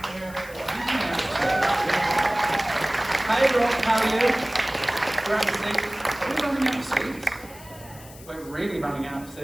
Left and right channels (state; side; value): noise; left; hiss, 19 dB below the sound